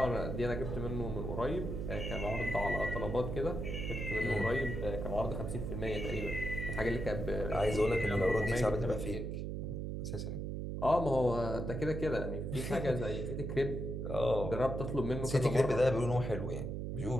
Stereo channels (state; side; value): noise; right; hum, 3 dB below the sound